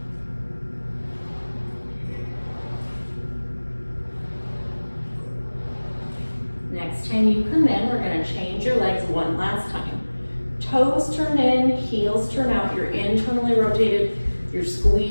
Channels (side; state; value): both; inverted; correlation -1.00